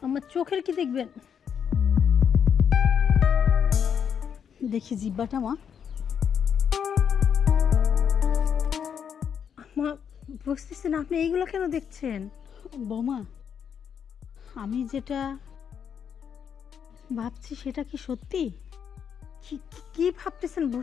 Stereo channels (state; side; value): quieter; right; 7.7 dB